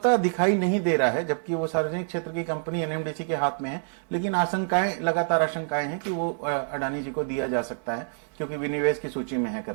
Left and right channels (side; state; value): left; silent; digital silence